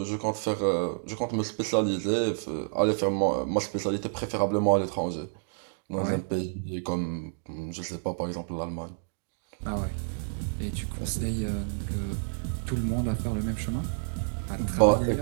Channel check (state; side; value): silent; left; digital silence